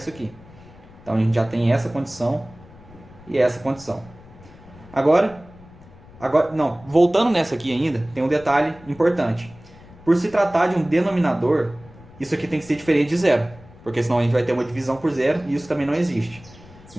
aqui. Então a gente já tem essa condição e essa condição. Voltando nessa aqui ainda, tem um detalhe importante. Por se tratar de um denominador, isso aqui tem que ser diferente de 0, porque senão a gente vai ter uma divisão por 0 e isso também não existe.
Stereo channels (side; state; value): left; noise; rumble, 22 dB below the sound